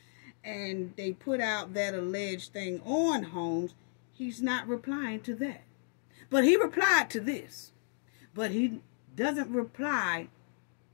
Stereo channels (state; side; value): silent; right; digital silence